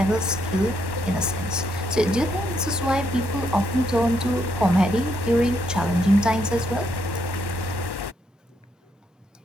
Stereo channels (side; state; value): both; normal; correlation 0.76